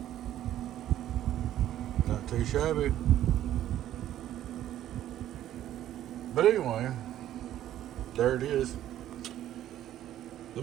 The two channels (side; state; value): left; quieter; 12.3 dB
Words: Not too shabby. But anyway, there it is. Let